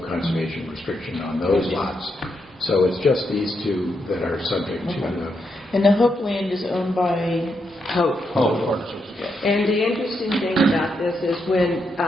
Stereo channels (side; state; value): both; normal; correlation 0.81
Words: conservation restriction on those lots. So it's just these 2 that are subject to And the Hope Land is owned by, Hope. Oh, And the interesting thing about this is when